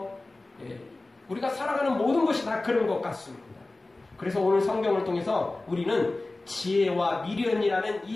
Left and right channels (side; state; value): right; quieter; 3.0 dB